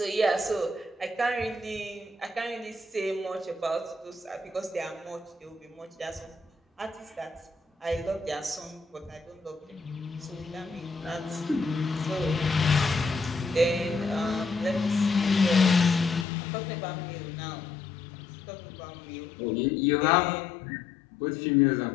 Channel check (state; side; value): drops out; right; at 16.2 s